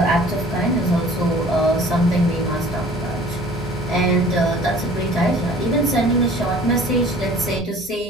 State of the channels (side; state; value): both; normal; correlation 0.49